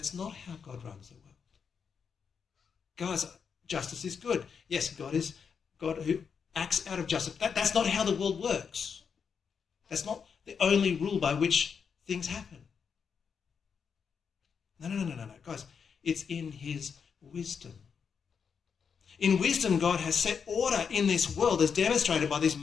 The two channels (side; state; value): right; quieter; 6.4 dB